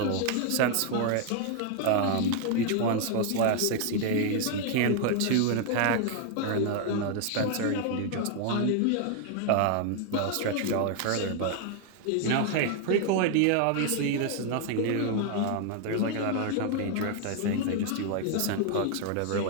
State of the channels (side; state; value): both; different; correlation 0.00